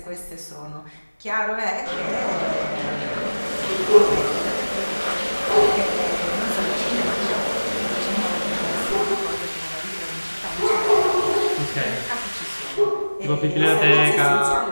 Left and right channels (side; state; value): both; inverted; correlation -1.00